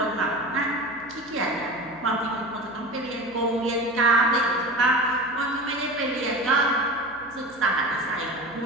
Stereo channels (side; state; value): left; noise; hum, 24 dB below the sound